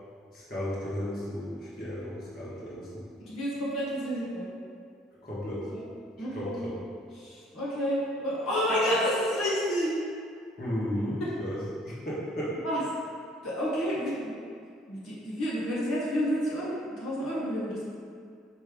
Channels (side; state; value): both; normal; correlation 0.60